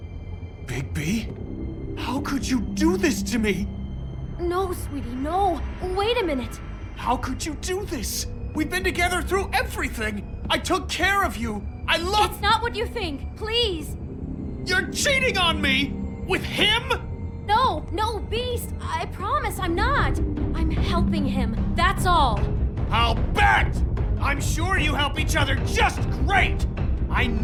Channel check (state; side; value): identical; both; correlation 1.00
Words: Bigby? How could you do this to me? No, sweetie, no. Wait a minute. How could you do this? We've been together through everything. I took care of you. I love— It's not what you think. Please. You're cheating on me! With him? No, Beast. I promise I'm not. I'm helping him. That's all. I'll bet! I'm sure you help each other just great! I